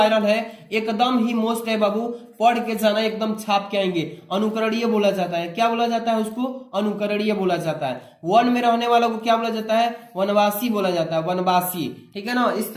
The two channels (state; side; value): identical; both; correlation 1.00